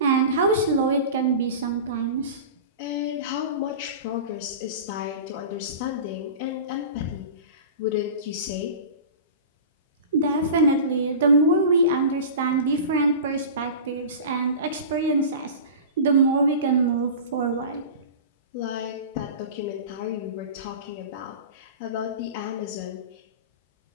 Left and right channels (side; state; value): both; inverted; correlation -0.33